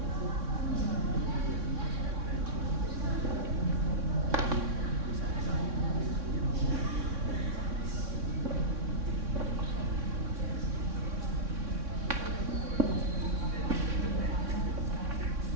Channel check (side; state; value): left; late; 3.6 ms